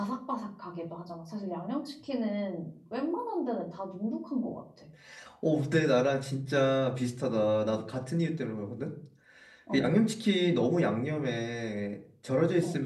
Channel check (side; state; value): both; identical; correlation 1.00